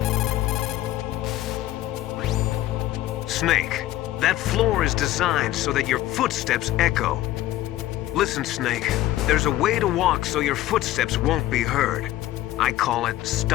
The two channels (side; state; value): right; quieter; 14.9 dB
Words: Snake, that floor is designed so that your footsteps echo. Listen, Snake, there's a way to walk so your footsteps won't be heard. I call it